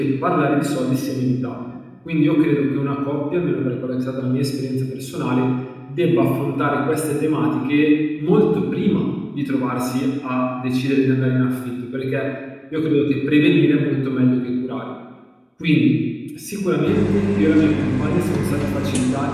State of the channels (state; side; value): identical; both; correlation 1.00